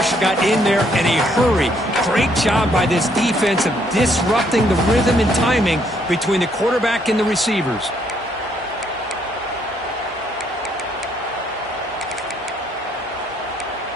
got in there in a hurry. Great job by this defense of disrupting the rhythm and timing between the quarterback and the receivers.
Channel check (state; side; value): normal; both; correlation 0.69